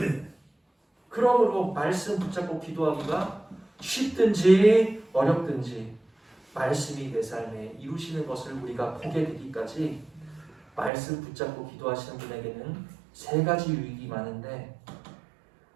그러므로 말씀 붙잡고 기도하기가 쉽든지 어렵든지 말씀이 내 삶에 이루시는 것을 우리가 보게 되기까지 말씀 붙잡고 기도하시는 분에게는 세 가지 유익이 많은데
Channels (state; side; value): drops out; left; at 10.9 s